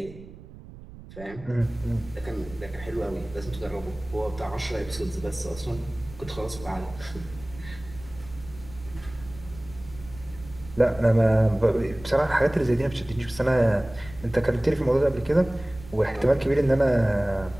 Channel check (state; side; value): noise; right; rumble, 17 dB below the sound